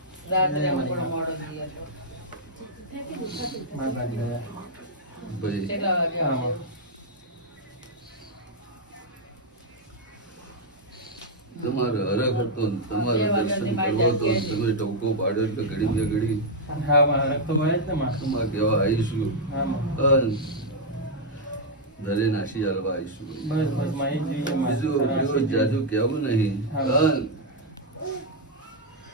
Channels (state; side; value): normal; both; correlation -0.02